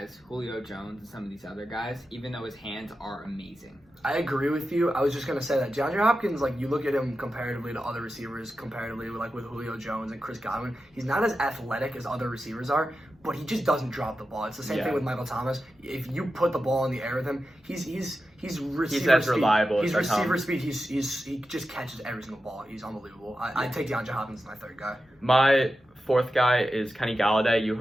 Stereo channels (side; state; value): both; normal; correlation 0.91